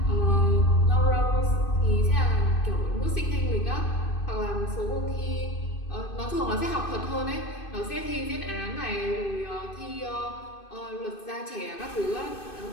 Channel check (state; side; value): late; right; 2.5 ms